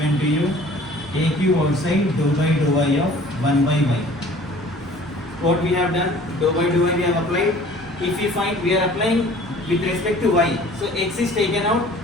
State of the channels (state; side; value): normal; both; correlation 0.50